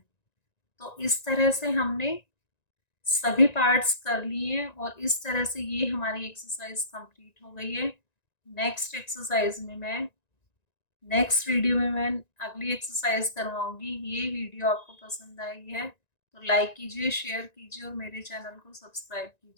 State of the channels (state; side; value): late; right; 1.9 ms